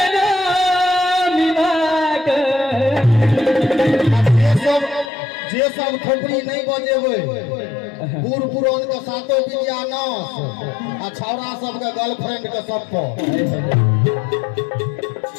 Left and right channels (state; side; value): drops out; right; at 5.1 s